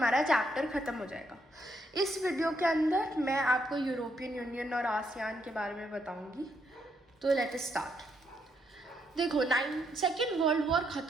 चैप्टर ख़त्म हो जाएगा। इस वीडियो के अंदर मैं आपको यूरोपियन यूनियन और आसियान के बारे में बताऊंगी। तो लेट अस स्टार्ट। देखो, सेकेंड वर्ल्ड वॉर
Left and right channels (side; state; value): both; normal; correlation 0.76